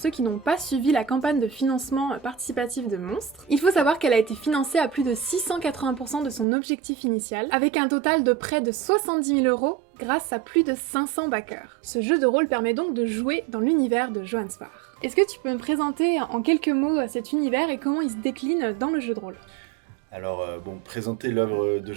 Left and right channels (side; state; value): left; drops out; at 6.5 s